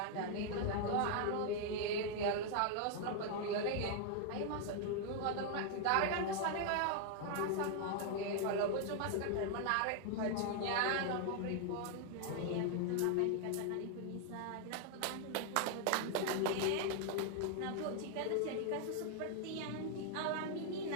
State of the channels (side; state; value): both; different; correlation 0.00